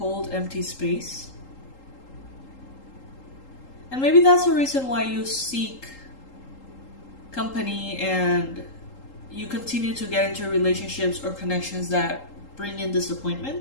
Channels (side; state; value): right; late; 3.8 ms